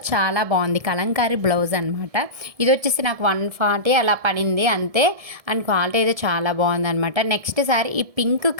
చాలా బాగుంది. కలంకారీ బ్లౌజ్ అనమాట. ఇది వచ్చేసి నాకు 140 అలా పడింది అంతే. అండ్ క్వాలిటీ అయితే చాలా బాగుందనమాట. నెక్స్ట్ శారీ ఈ పింక్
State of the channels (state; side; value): late; left; 1.7 ms